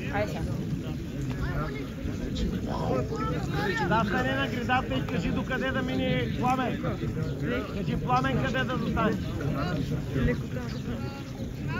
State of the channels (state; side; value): identical; both; correlation 1.00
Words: Да, стане на гредата и кажи докъде да мине Пламен. Кажи Пламен къде да застане.